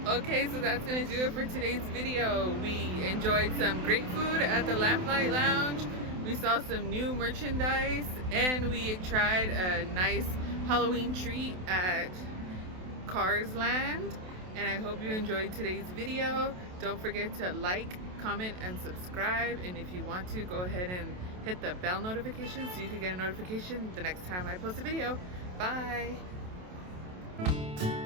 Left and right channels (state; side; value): late; left; 27 ms